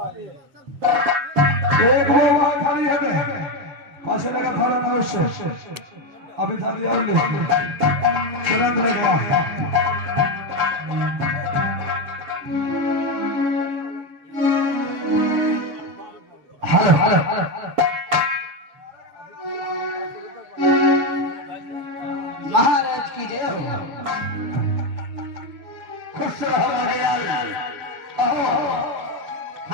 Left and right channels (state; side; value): late; left; 7.1 ms